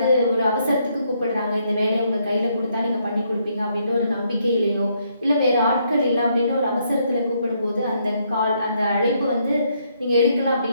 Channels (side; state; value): both; inverted; correlation -0.73